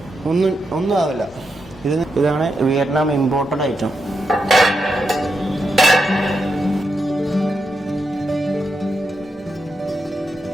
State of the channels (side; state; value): both; normal; correlation 0.85